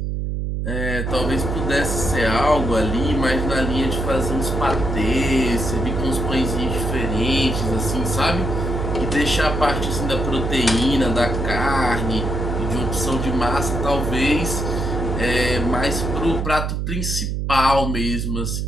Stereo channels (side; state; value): right; noise; hum, 1 dB below the sound